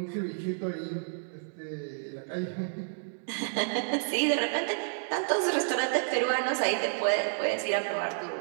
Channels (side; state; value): left; silent; digital silence